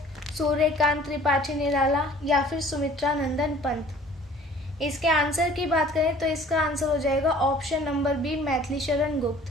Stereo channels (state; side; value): normal; both; correlation 0.51